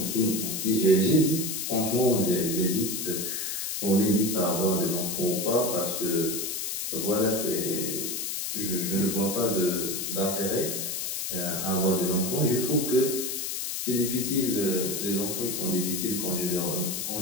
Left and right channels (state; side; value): noise; left; hiss, 3 dB below the sound